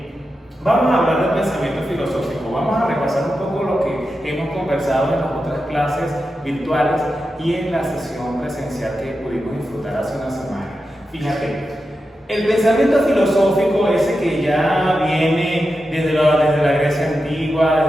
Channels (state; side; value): normal; both; correlation 0.90